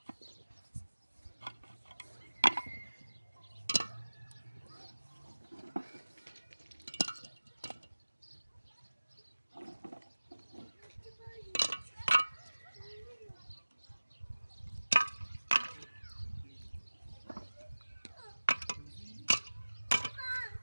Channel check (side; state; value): both; inverted; correlation -1.00